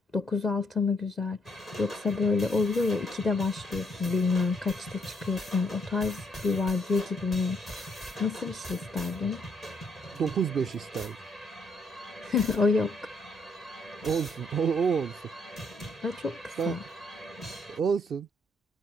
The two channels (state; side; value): normal; both; correlation 0.71